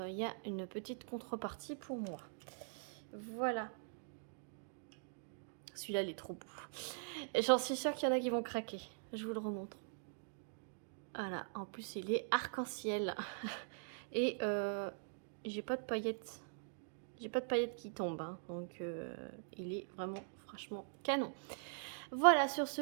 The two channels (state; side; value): silent; left; digital silence